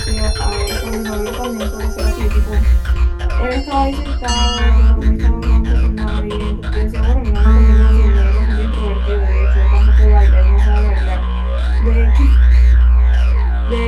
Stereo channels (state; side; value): identical; both; correlation 1.00